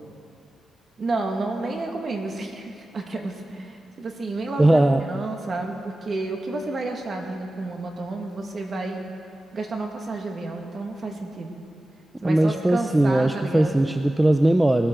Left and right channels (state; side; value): normal; both; correlation 0.95